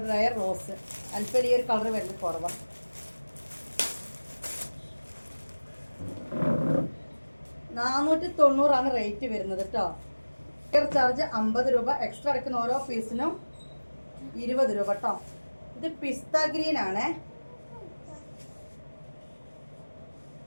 റയർ റോസ്. അല്പം ഈ ഒരു കളർ വരുന്നത് കുറവാണ്. 490 റേറ്റ് വരുന്നത് കേട്ടോ. കൊറിയർ ചാർജ് 50 രൂപ, എക്സ്ട്രാ എടുക്കുന്ന ഓരോ പീസിനും 20 രൂപ കേട്ടോ. ഇത് പിസ്ത ഗ്രീൻ ആണേ.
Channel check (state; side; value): inverted; both; correlation -1.00